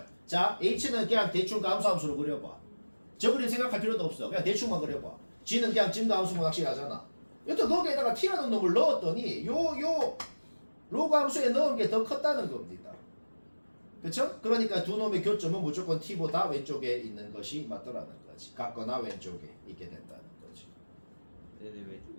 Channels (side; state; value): both; inverted; correlation -1.00